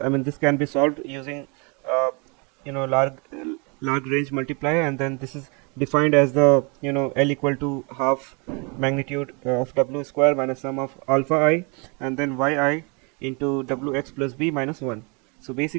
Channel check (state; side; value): quieter; left; 32.4 dB